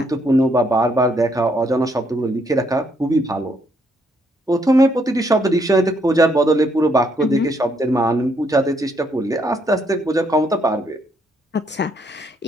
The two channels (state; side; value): normal; both; correlation 0.72